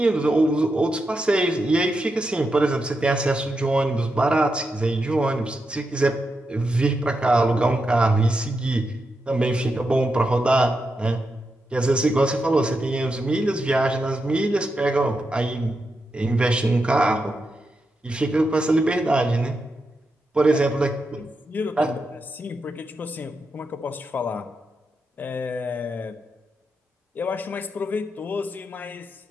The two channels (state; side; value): normal; both; correlation 0.86